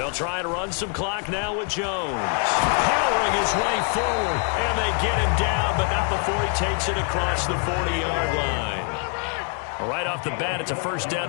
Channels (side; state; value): right; quieter; 37.0 dB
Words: try to run some clock now with Jones. Powering his way forward, and they get him down, but not before he takes it across the 40-yard line. Right off the bat, it's a first down